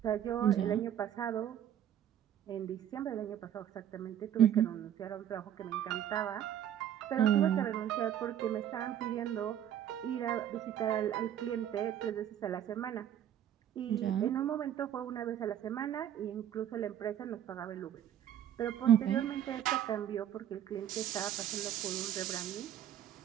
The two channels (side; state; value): left; quieter; 10.4 dB